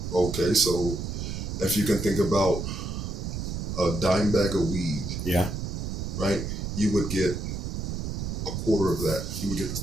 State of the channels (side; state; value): right; noise; rumble, 4 dB below the sound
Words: Okay, so if you can think about a dime bag of weed, right? You would get a quarter of that. You would get the